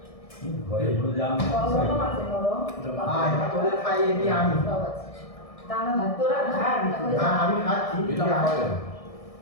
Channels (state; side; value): late; right; 1.6 ms